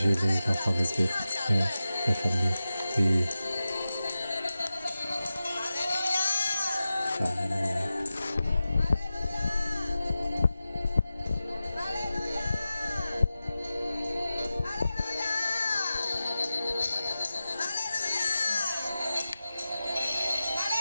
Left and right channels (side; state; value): both; inverted; correlation -0.94